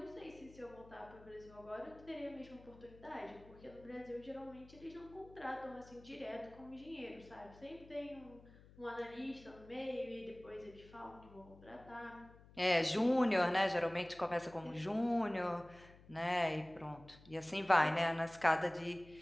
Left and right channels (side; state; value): left; noise; hum, 22 dB below the sound